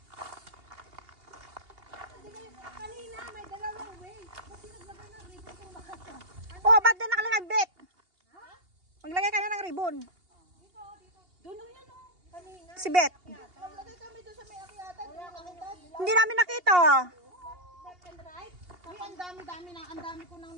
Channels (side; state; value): left; late; 2.8 ms